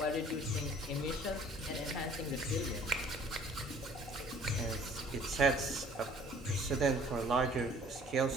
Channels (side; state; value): both; normal; correlation 0.54